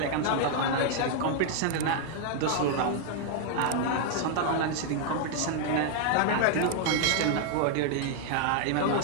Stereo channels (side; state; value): both; different; correlation 0.00